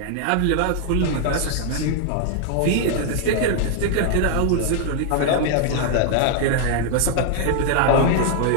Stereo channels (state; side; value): different; both; correlation 0.00